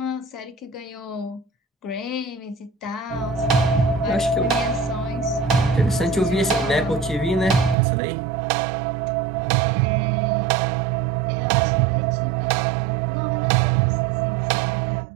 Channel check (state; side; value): drops out; left; at 7.8 s